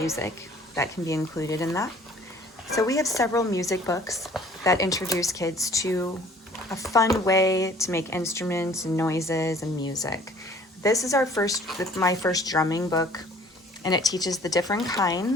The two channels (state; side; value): normal; both; correlation 0.53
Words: that can be included in that. So we have several music books that introduce kids to a fun way to make instruments and noises and music. This is my first drumming book, and it teaches the different